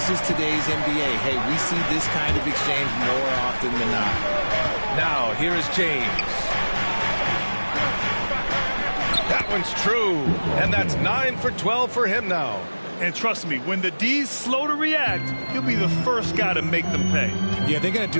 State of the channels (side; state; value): both; inverted; correlation -1.00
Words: is today's NBA. Hey, we see this kind of exchange more often than not. Now, here is James. That one's true. And that's 9 for 12 for him now. And trust me, when the D's slow to react, he'll be the first guy to make them pay. Yeah, they're going to